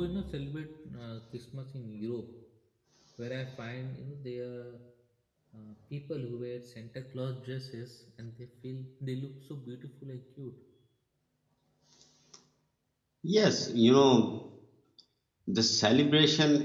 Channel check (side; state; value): both; identical; correlation 1.00